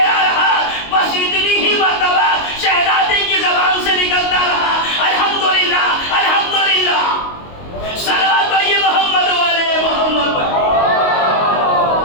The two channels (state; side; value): late; right; 22 ms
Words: رہا، بس اتنی ہی مرتبہ شہزادی کی زبان سے نکلتا رہا الحمدللہ الحمدللہ. صلوات پڑھیے محمد والے محمد پر.